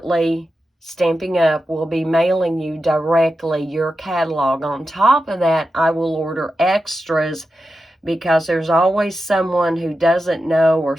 Stampin'Up will be mailing you directly your catalog. On top of that, I will order extras because there's always someone who doesn't know or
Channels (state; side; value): normal; both; correlation 0.91